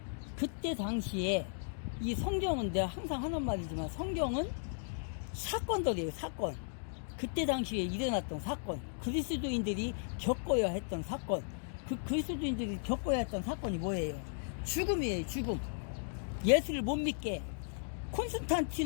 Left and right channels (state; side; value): silent; right; digital silence